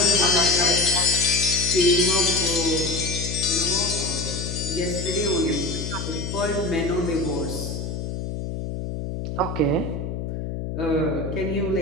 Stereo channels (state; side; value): noise; left; hum, 5 dB below the sound